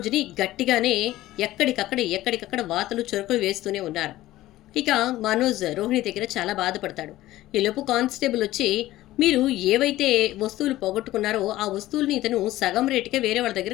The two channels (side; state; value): right; quieter; 15.9 dB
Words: గట్టిగానే ఎక్కడికక్కడ వాతలు చురుకులు వేస్తూనే ఉన్నారు. ఇక మనోజ్ రోహిణి దగ్గర చాలా బాధపడతాడు. ఈలోపు కానిస్టేబుల్ వచ్చి మీరు ఏవైతే వస్తువులు పోగొట్టుకున్నారో ఆ వస్తువుల్ని ఇతను సగం రేటుకే వేరే వాళ్ళ